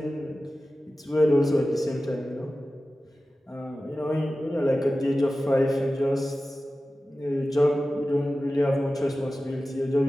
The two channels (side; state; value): both; normal; correlation 0.95